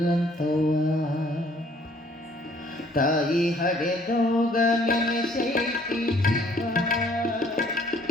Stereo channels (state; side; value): normal; both; correlation 0.60